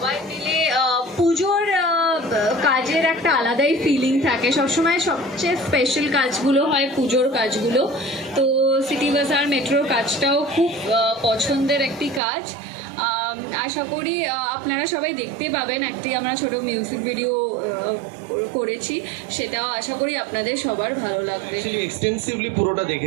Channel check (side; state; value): left; drops out; at 12.2 s